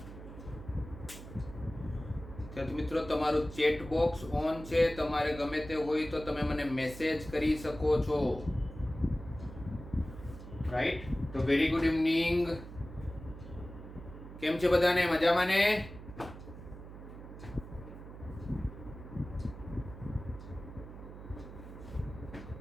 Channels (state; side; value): noise; right; hum, 13 dB below the sound